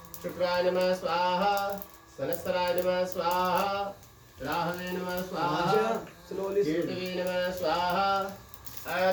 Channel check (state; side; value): identical; both; correlation 1.00